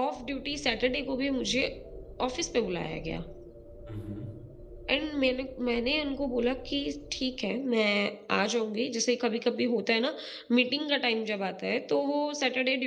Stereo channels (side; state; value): both; identical; correlation 1.00